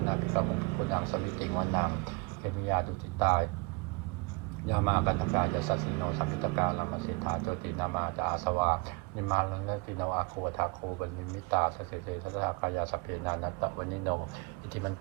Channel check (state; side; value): quieter; left; 27.9 dB